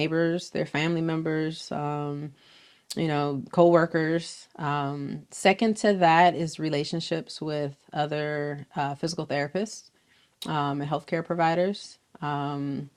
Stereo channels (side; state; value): both; identical; correlation 1.00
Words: their family members, coworkers. Second to that is relationships with other physical therapists and healthcare providers. And